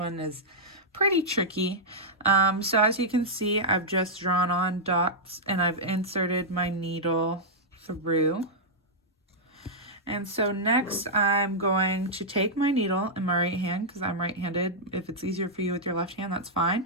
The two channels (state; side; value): normal; both; correlation -0.07